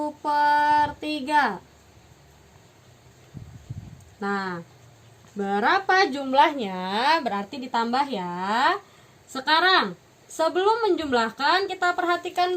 Nah, berapa jumlahnya? Berarti ditambah ya. Sekarang sebelum menjumlahkan, kita perhatikan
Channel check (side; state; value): both; identical; correlation 1.00